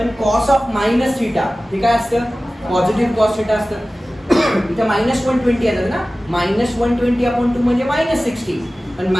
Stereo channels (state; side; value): normal; both; correlation 0.96